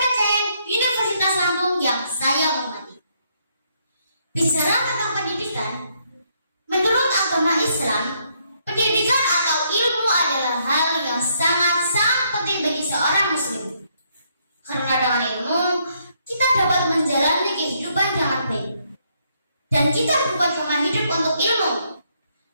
Universitas Lampung yang saya hormati. Bicara tentang pendidikan, menurut agama Islam, pendidikan atau ilmu adalah hal yang sangat-sangat penting bagi seorang muslim. Karena dengan ilmu, kita dapat menjalani kehidupan dengan baik. Dan kita bukan cuma hidup untuk ilmu,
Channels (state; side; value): inverted; both; correlation -0.72